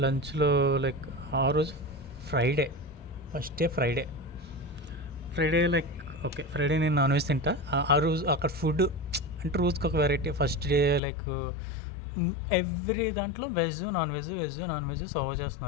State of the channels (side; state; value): right; drops out; at 11.0 s